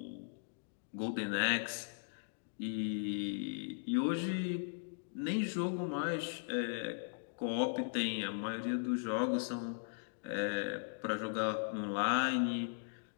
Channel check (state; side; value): silent; right; digital silence